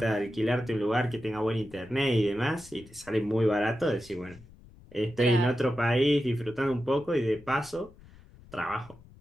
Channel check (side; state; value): left; noise; rumble, 22 dB below the sound